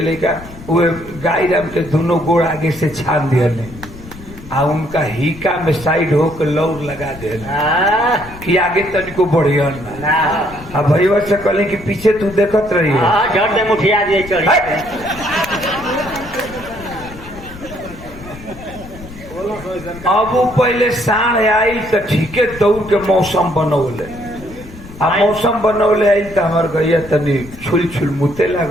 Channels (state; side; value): noise; left; rumble, 16 dB below the sound